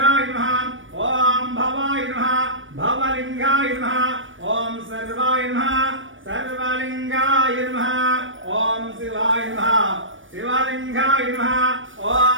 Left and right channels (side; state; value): left; late; 0.57 ms